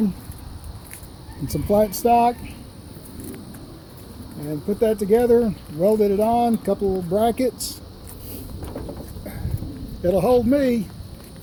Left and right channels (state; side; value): identical; both; correlation 1.00